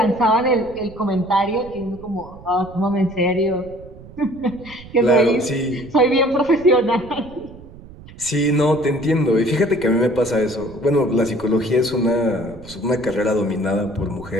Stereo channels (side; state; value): right; noise; rumble, 18 dB below the sound